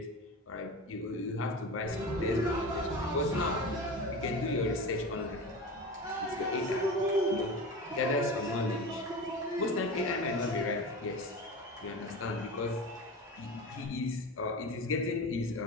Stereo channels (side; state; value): both; normal; correlation 0.29